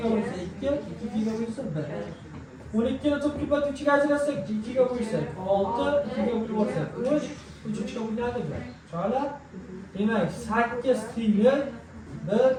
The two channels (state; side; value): identical; both; correlation 1.00